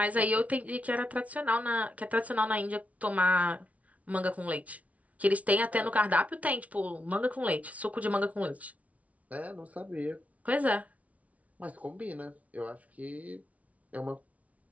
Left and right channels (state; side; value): late; left; 0.068 ms